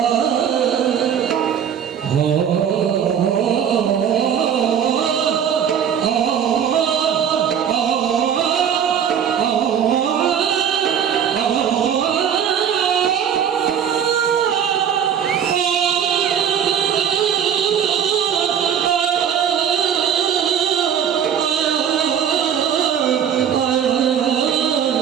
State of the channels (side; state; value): left; quieter; 8.5 dB